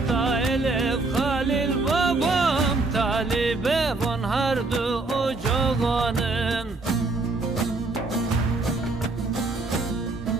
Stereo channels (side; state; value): left; quieter; 3.4 dB